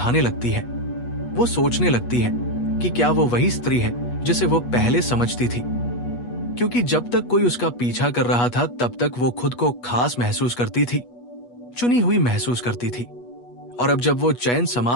लगती है। वो सोचने लगती है कि क्या वो वही स्त्री है जिसे वो पहले समझती थी, क्योंकि जब तक कोई उसका पीछा कर रहा था तब तक वो खुद को खास महसूस करती थी, चुनी हुई महसूस करती थी। और अब जब वो चयन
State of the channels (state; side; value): late; right; 8.3 ms